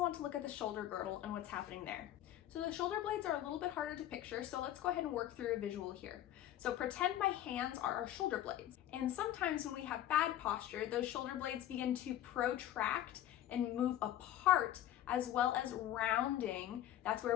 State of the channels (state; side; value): quieter; right; 12.4 dB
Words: want to look at the shoulder girdle and what's happening there. So the shoulder blades are a little bit harder to picture, so let's go ahead and work through a visual here. So pretend my hands are our shoulder blades. And sometimes when we have bad posture, those shoulder blades begin to protract and move apart, as well as rounding. That's